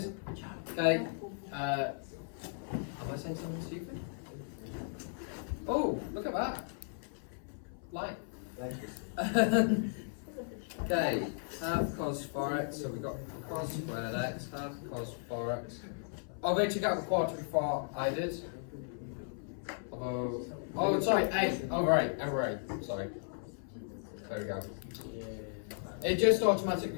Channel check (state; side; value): silent; right; 54 dB below the other